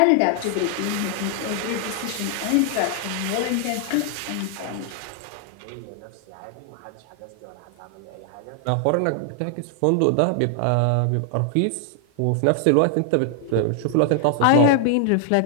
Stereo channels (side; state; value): both; different; correlation 0.00